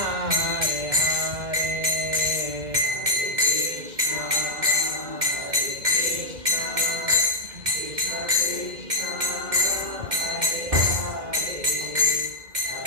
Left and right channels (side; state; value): left; late; 2.1 ms